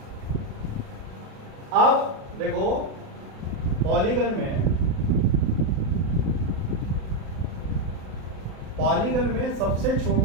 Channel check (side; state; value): left; late; 37 ms